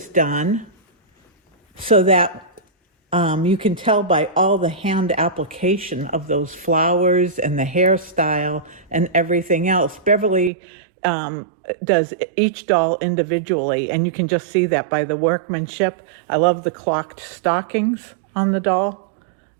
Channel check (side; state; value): left; drops out; at 10.5 s